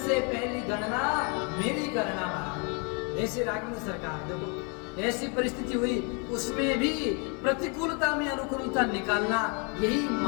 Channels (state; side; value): quieter; right; 36.0 dB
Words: पहली गणना मेरी करना। ऐसे राघवेंद्र सरकार, देखो ऐसी परिस्थिति हुई, उसमें भी प्रतिकूलता में अनुकूलता निकालना, यही